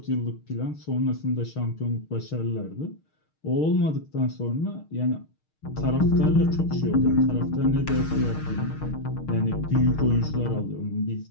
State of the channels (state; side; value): late; right; 6.5 ms